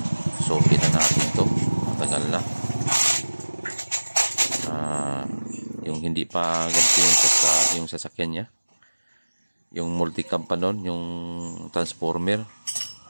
So kita natin to. Matagal na. Yung hindi pa ganito yung sasakyan niya. Yung multicam pa nun, yung transformer.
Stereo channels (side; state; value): both; inverted; correlation -1.00